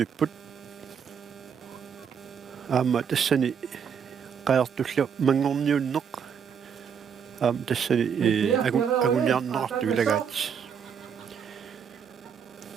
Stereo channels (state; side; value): quieter; left; 7.3 dB